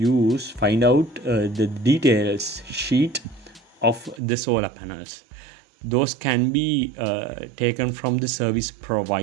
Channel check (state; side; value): drops out; left; at 4.2 s